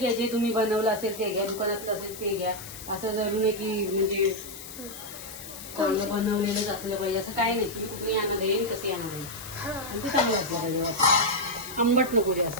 जे तुम्ही बनवलं असेल ते घ्या, दुकानातलं असेल ते घ्या. असं जरूर नाही की म्हणजे चांगलं बनवलेलंच असलं पाहिजे असं काय नाही. तुम्ही कुठे आणणार येईल तसे आणणार येईल आणि ते चांगलं असलं पाहिजे, आंबट नको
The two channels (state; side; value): noise; left; hiss, 13 dB below the sound